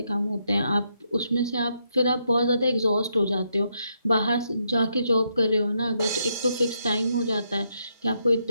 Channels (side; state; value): both; inverted; correlation -0.78